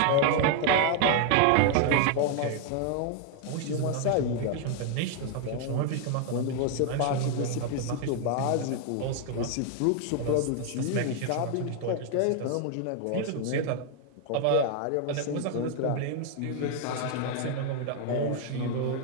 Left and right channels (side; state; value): both; different; correlation 0.00